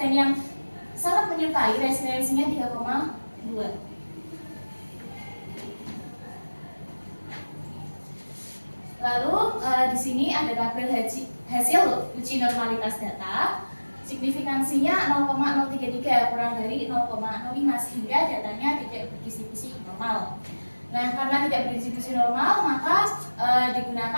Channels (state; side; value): inverted; both; correlation -1.00